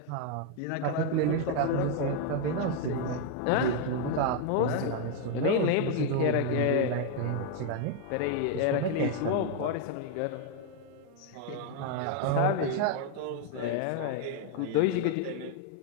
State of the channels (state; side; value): different; both; correlation 0.01